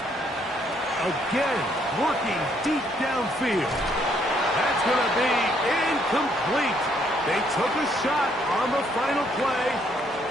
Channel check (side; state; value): both; normal; correlation 0.69